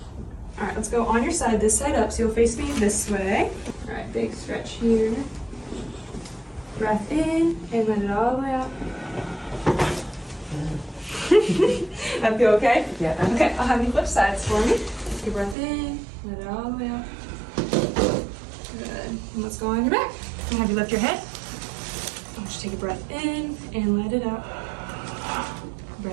All right, let's go on your side, this side up, so you'll face me this way. All right, big stretch here. Breath in and let it all the way out. That feel okay? Yeah. Okay, I'll have you flip sides for me. Take a breath in, let it all the way out. Good. And let's go on your back. I'll have you lift your head. I'll just take a breath in and let it out.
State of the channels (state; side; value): drops out; left; at 15.6 s